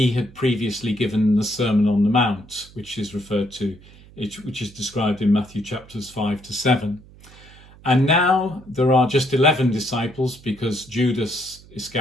had previously given the Sermon on the Mount, which is described in Matthew chapters 5 to 7. And now there are just 11 disciples because Judas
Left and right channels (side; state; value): right; noise; hum, 23 dB below the sound